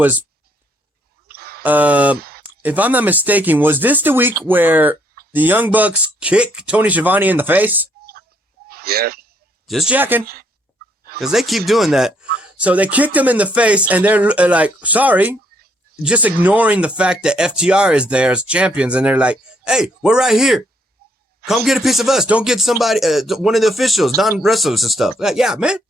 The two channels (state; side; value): normal; both; correlation 0.70